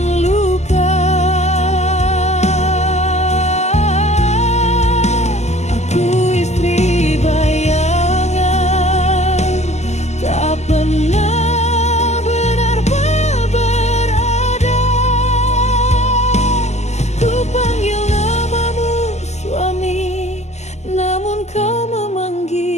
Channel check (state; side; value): late; right; 0.33 ms